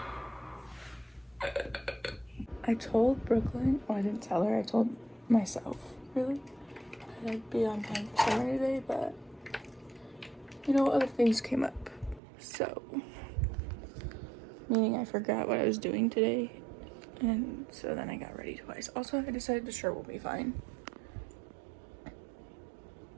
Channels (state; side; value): drops out; left; at 12.2 s